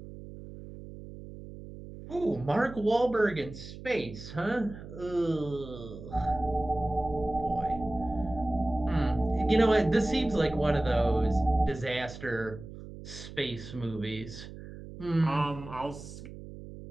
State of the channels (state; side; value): noise; right; hum, 13 dB below the sound